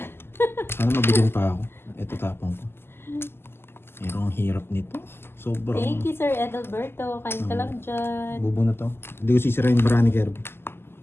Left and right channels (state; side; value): late; right; 0.11 ms